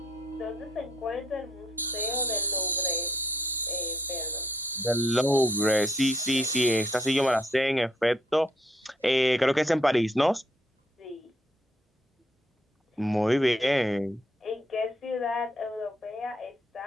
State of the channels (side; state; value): both; normal; correlation 0.70